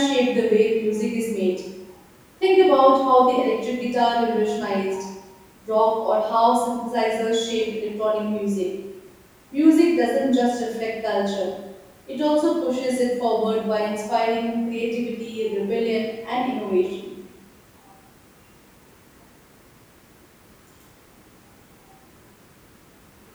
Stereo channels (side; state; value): both; identical; correlation 1.00